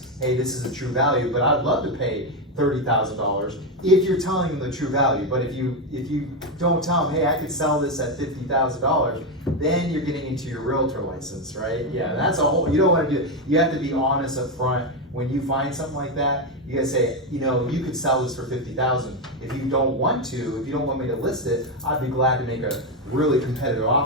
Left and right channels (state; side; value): normal; both; correlation 0.09